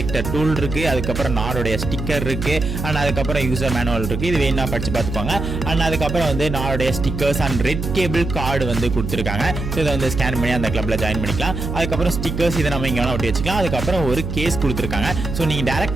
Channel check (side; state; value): right; noise; hum, 5 dB below the sound